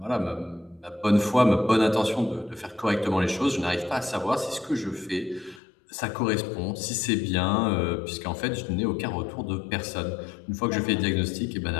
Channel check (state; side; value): drops out; right; at 5.6 s